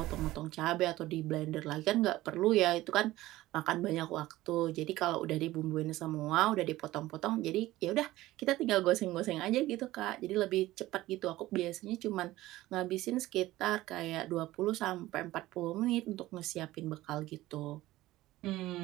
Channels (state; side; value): quieter; left; 16.8 dB